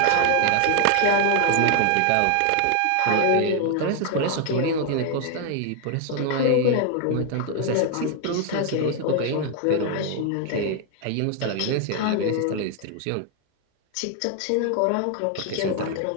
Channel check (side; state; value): both; different; correlation 0.00